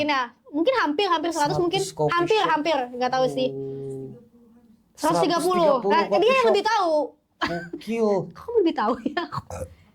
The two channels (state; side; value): identical; both; correlation 1.00